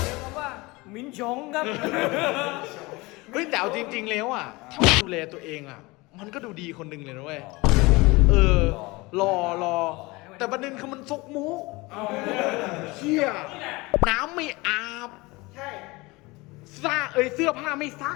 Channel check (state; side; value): quieter; right; 23.3 dB